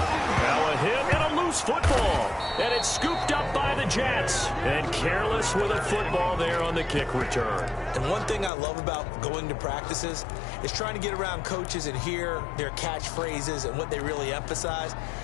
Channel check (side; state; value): right; drops out; at 8.5 s